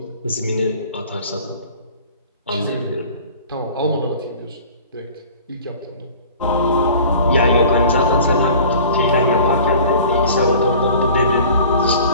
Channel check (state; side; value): inverted; both; correlation -0.45